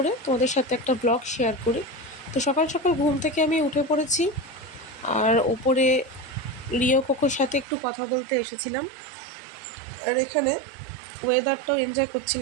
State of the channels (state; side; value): drops out; left; at 7.7 s